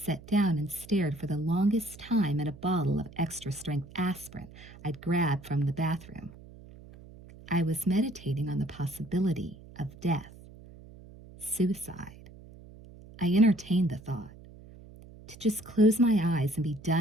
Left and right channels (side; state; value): right; noise; hum, 19 dB below the sound